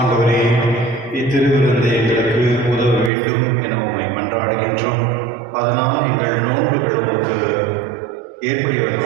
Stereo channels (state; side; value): drops out; left; at 3.1 s